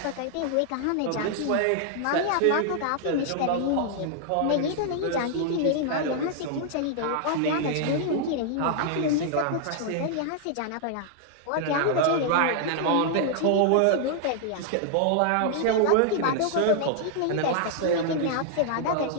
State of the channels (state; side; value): different; both; correlation -0.01